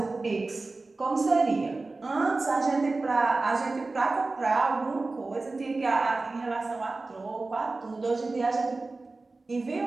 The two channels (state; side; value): quieter; left; 3.5 dB